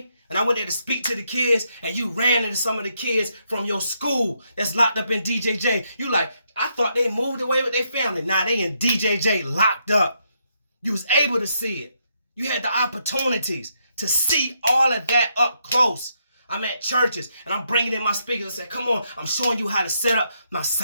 And I went there to speak to the kids, and you ran into some of the kids from your school that's locked up in DJJ. You like, I thought they moved away with their family. Now they in DJJ locked up. You was able to see it. You had the opportunities to see all of that up close. I'm at churches, and I'm bringing in my speakers and say, come on, I'm showing you how to set up my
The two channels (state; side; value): inverted; both; correlation -0.77